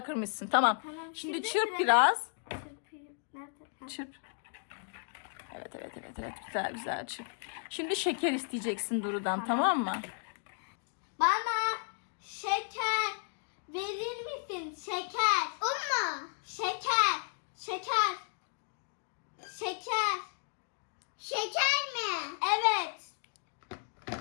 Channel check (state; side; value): silent; right; 55 dB below the other